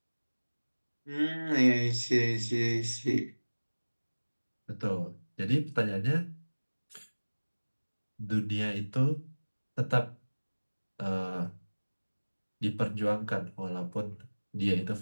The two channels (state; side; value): inverted; both; correlation -1.00